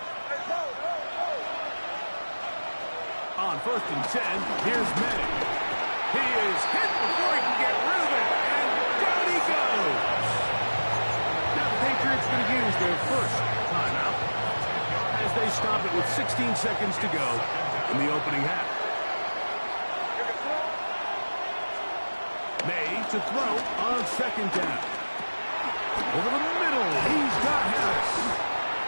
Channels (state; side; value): inverted; both; correlation -1.00